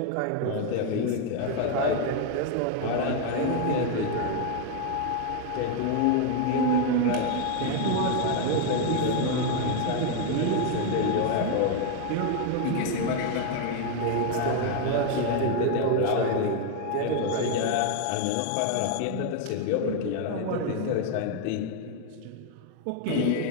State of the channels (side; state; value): both; different; correlation 0.01